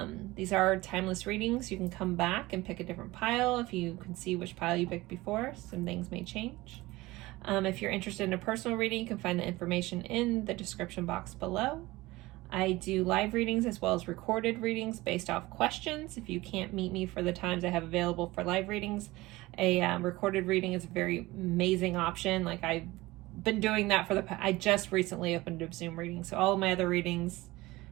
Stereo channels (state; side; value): quieter; left; 19.8 dB